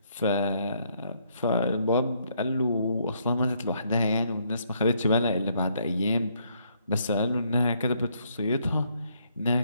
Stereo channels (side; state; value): both; inverted; correlation -0.71